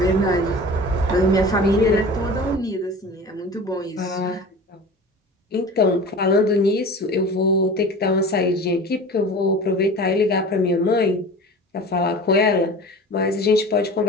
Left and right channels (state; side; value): normal; both; correlation 0.37